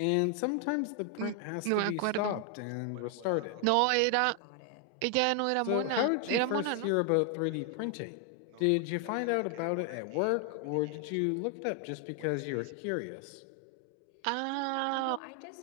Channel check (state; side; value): different; both; correlation 0.00